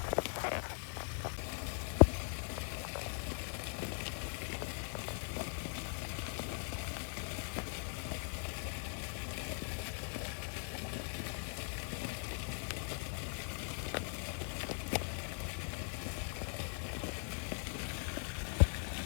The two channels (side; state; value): right; silent; 51 dB below the other